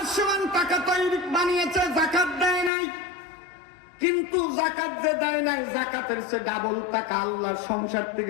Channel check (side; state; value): right; drops out; at 2.7 s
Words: সমান টাকা তৈরি বানিয়েছে, যাকাত দেয় নাই, কিন্তু যাকাত যে দেয় নাই, যাকাতের সে ডাবল টাকা আল্লাহ সংসার